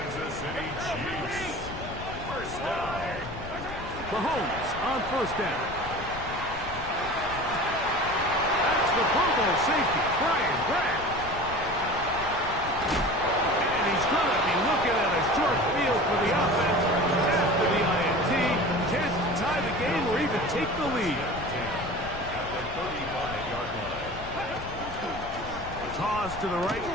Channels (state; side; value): noise; left; rumble, 12 dB below the sound